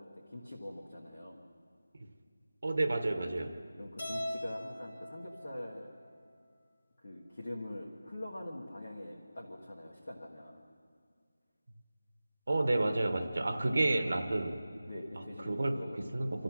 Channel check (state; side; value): inverted; both; correlation -0.97